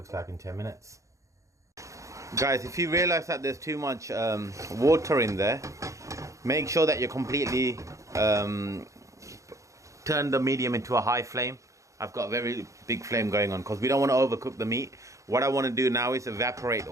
like in 10 minutes. Guys, if you realize that there's too much water in there, make sure that you completely turn the medium into a high flame. I've got a very big flame going on because we don't want to overcook the meat. What I want to do now is evaporate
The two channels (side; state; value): left; late; 0.15 ms